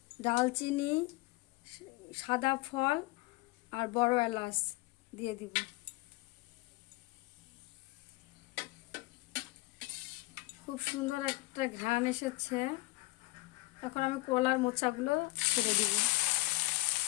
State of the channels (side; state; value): right; quieter; 22.2 dB